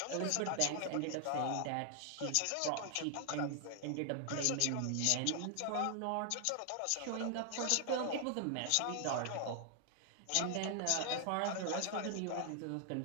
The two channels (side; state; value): both; different; correlation 0.00